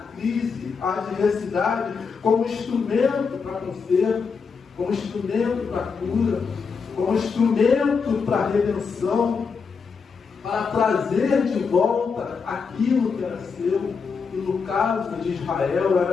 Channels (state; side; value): quieter; right; 5.4 dB